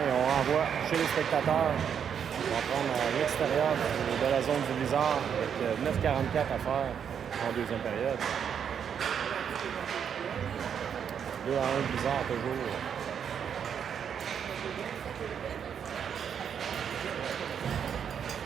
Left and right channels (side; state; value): left; quieter; 7.9 dB